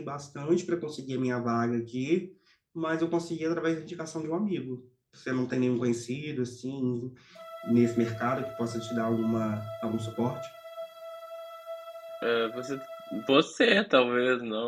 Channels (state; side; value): identical; both; correlation 1.00